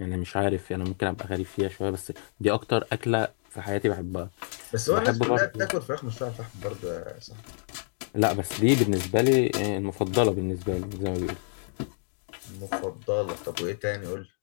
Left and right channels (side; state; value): right; silent; digital silence